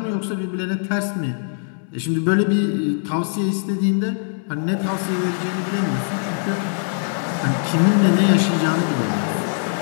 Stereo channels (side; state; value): right; silent; digital silence